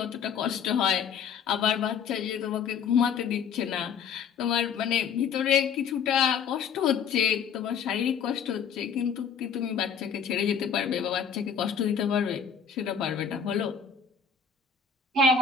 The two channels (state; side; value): quieter; right; 6.8 dB